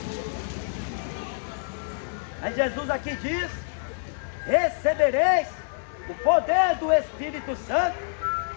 Mas Jesus aqui diz: recebereis o poder do Espírito Santo.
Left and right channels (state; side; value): silent; right; 59 dB below the other